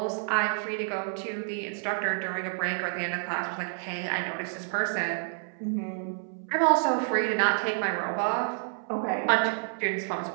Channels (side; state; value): left; silent; 59 dB below the other